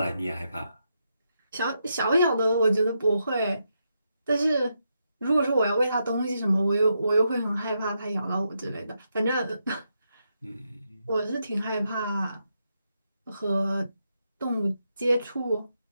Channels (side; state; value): both; inverted; correlation -0.82